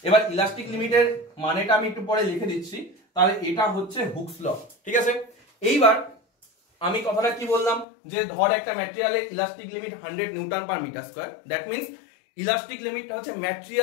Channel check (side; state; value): right; drops out; at 7.9 s